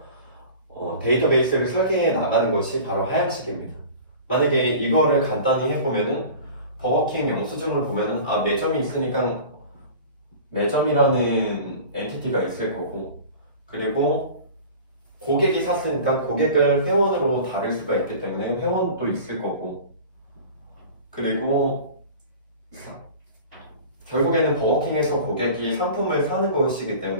데이터베이스를 설계해 나가는 것이 바로 하향식입니다. 만약에 이거를 간단히 해보면은 버거킹 영수증을 보면은 매점이 있으니까 매점이라는 엔티티가 있을 거고 그리고 고객이 샀으니까 고객을 회원으로 다룰 수가 있기 때문에 회원도 있을 거고 그리고 결국에는 버거킹에서 고객이 상품을 사는 것이기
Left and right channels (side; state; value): both; inverted; correlation -0.40